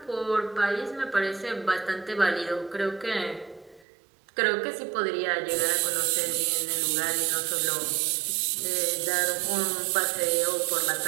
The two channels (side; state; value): left; drops out; at 3.9 s